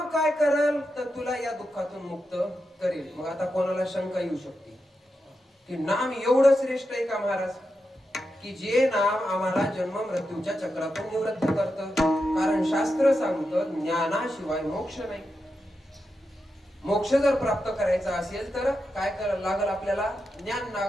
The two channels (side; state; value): both; normal; correlation 0.88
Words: काय करेल तर तुला या दुःखातून मुक्त करेल. मग आता कोणाला शंका येऊ शकते की नाम एवढं श्रेष्ठ आहे का महाराज, की जे नाम आम्हाला जन्म मृत्यूच्या चक्रातून निवृत्त करतं? कारण शास्त्र सांगतं ज्ञानाशिवाय मोक्ष नाही. मोक्ष जर प्राप्त करायचा असेल तर काय करायला लागल? आपल्याला ज्ञान